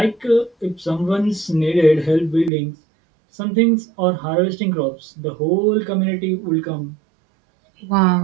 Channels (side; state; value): left; drops out; at 2.5 s